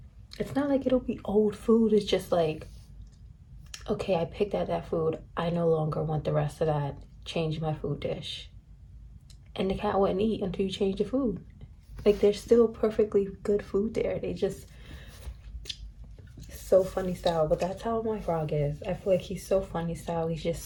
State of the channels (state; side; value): identical; both; correlation 1.00